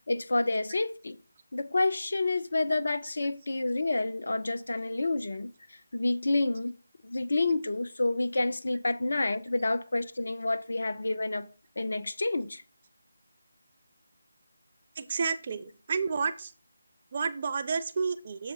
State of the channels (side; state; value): both; inverted; correlation -0.94